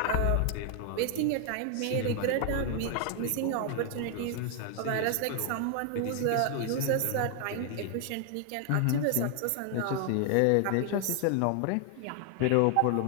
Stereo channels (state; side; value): different; both; correlation 0.00